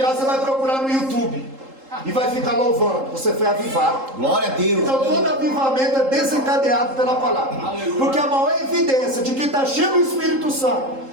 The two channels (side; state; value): left; late; 3.8 ms